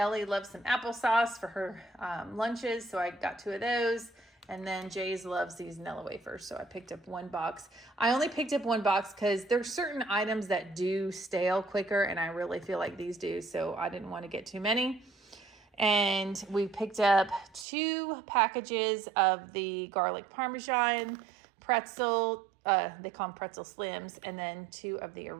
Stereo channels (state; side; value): drops out; left; at 17.7 s